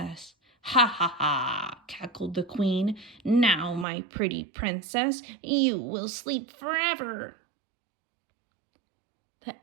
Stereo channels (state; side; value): drops out; left; at 3.9 s